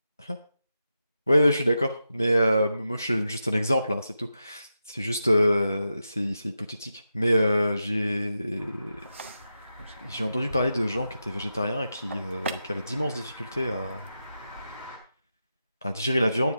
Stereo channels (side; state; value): both; inverted; correlation -0.89